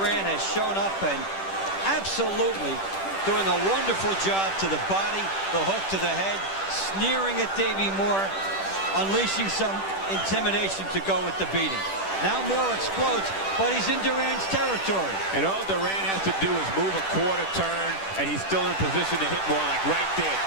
has shown up and absolutely doing a wonderful job to the body, the hook to the head, sneering at Davey Moore, unleashing some intimidation to go with the beating. Now Moore explodes, but he's in Duran's territory. And all Duran has to do is move a quarter turn, and he's still in position to hit more, like right there.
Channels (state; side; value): late; right; 10 ms